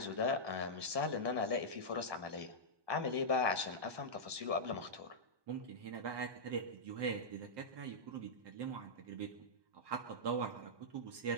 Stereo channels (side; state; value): left; late; 1.2 ms